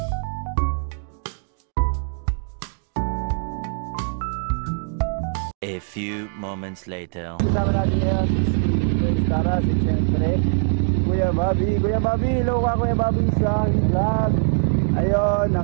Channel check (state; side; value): silent; left; digital silence